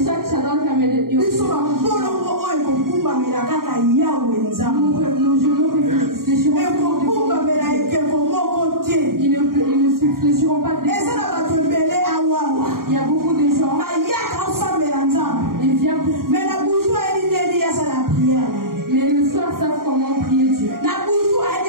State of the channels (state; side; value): late; left; 0.92 ms